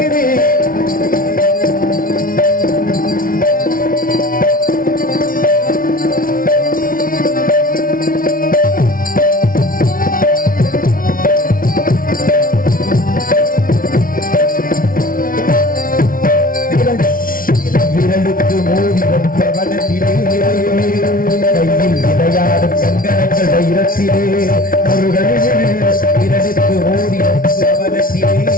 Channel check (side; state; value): right; late; 0.41 ms